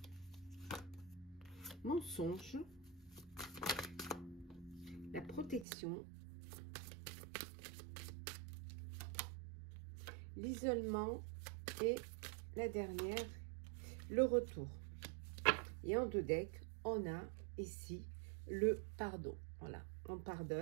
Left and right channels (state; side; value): drops out; left; at 5.7 s